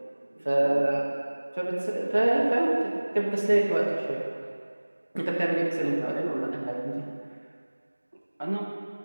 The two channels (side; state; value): both; inverted; correlation -1.00